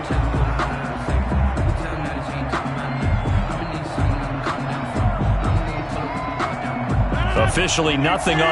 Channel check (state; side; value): identical; both; correlation 1.00